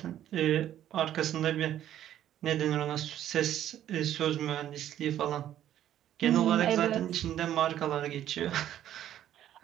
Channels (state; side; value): quieter; left; 11.6 dB